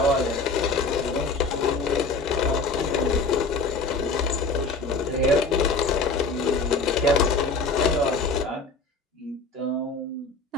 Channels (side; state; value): right; quieter; 3.8 dB